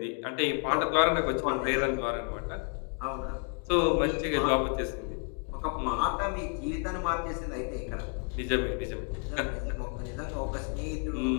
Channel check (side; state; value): right; quieter; 39.7 dB